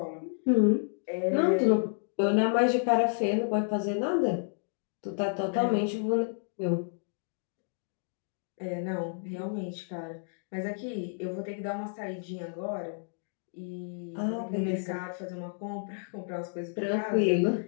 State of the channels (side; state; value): right; silent; digital silence